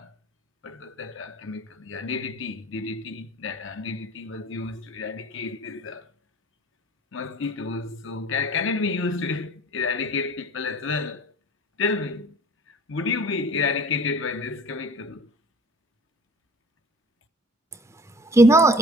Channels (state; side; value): normal; both; correlation 0.44